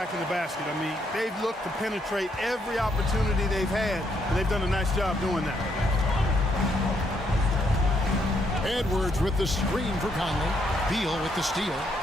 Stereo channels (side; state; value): both; normal; correlation 0.74